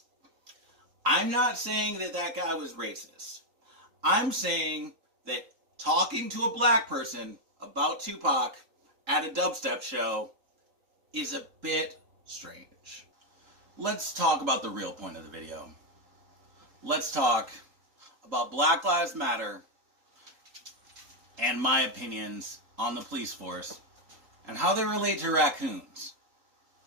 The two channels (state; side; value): late; left; 3.8 ms